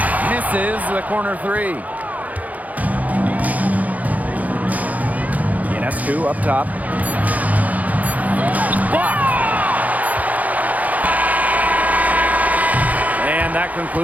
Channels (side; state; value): left; late; 0.076 ms